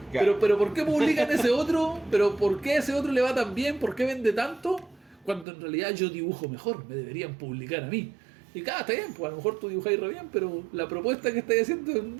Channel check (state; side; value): drops out; left; at 5.5 s